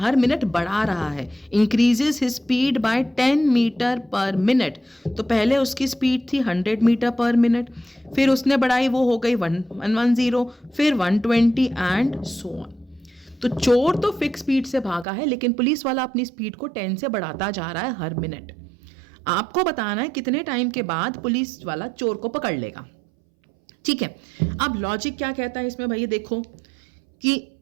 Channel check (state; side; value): drops out; left; at 15.1 s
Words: मिनट बढ़ा रहा है, increases his speed by 10 metre per minute. तो पहले उसकी स्पीड थी 100 मीटर पर मिनट, फिर उसने बढ़ाई, वो हो गई 110, फिर 120 एंड सो ऑन। तो चोर तो फिक्स स्पीड से भागा है, लेकिन पुलिस वाला अपनी स्पीड को 10 से बढ़ाता जा रहा है हर मिनट। आपको बताना है कितने टाइम के बाद पुलिस वाला चोर को पकड़ लेगा। ठीक है। अब लॉजिक क्या कहता है इसमें, भैया देखो कि